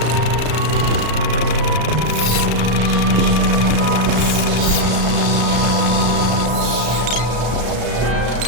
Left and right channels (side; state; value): left; late; 34 ms